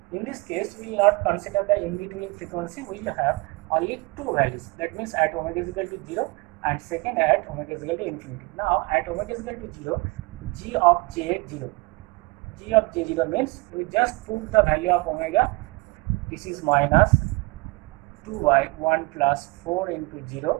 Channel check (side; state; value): left; quieter; 25.5 dB